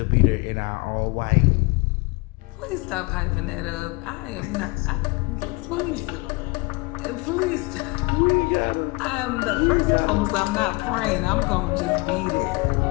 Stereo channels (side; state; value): right; quieter; 25.7 dB